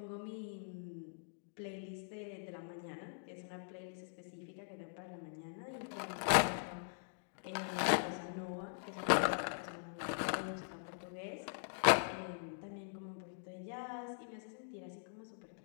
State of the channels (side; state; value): right; silent; digital silence